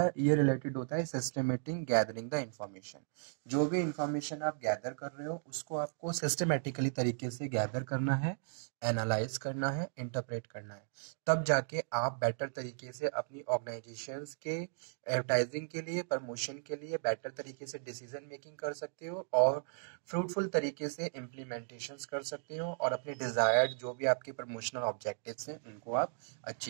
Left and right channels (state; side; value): silent; left; digital silence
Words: है ये रिलेटेड होता है सिस्टमेटिक गैदरिंग द इंफॉर्मेशन। जो भी इंफॉर्मेशन आप गैदर कर रहे हो उसको आपको सिस्टमेटिकली तरीके से गैदर करना है, एनालाइज करना है, इंटरप्रेट करना है, तब जाके आप बेटर तरीके से अपनी ऑर्गेनाइजेशंस के एडवर्टाइजिंग के लिए, प्रमोशन के लिए बेटर तरीके से डिसीजन मेकिंग कर सकते हो और फ्रूटफुल तरीके से इम्प्लीमेंटेशंस कर सकते हो और अपने डिज़ायर्ड जो भी आपके प्रमोशनल ऑब्जेक्टिव्स हैं उनको आप